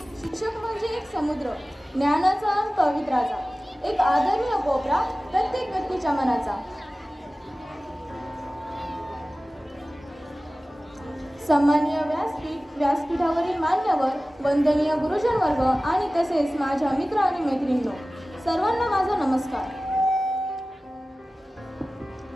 शिक्षक म्हणजे एक समुद्र, ज्ञानाचा आणि पवित्राचा, एक आदरणीय कोपरा प्रत्येक व्यक्तीच्या मनाचा. सन्माननीय व्यासपीठावरील मान्यवर, वंदनीय गुरुजन वर्ग आणि तसेच माझ्या मित्र आणि मैत्रिणींनो, सर्वांना माझा नमस्कार.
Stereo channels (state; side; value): normal; both; correlation 0.96